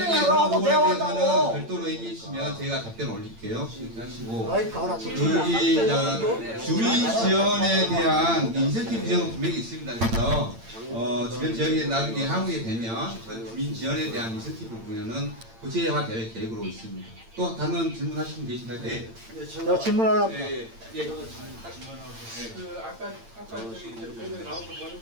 설명하고 그런 하고 부분에 대화한다고. 대해서는 별도로 얘기해 주시면 제가 답변 올릴게요. 이렇게 하시고 마이크 하나 또 주민 지원에 대한 인센티브 지원은 분명히 있습니다. 그래서 주변 지역에 나중에 하게 되면 그 주민 지원에 대한 인센티브 부분은 구체화될 계획으로 있습니다. 또 다른 질문하시는 분 계신가요? 네. 제가 질문하려고 아까 저기 이제 나온 거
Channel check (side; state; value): left; late; 8.8 ms